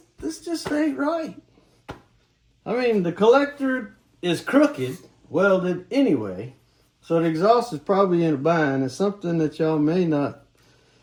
ain't right. I mean, the collector is crooked, welded anyway, so the exhaust is probably in a bind. It's something that y'all may not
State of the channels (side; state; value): both; identical; correlation 1.00